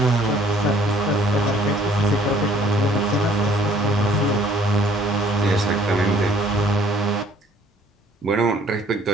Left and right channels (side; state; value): both; normal; correlation 0.58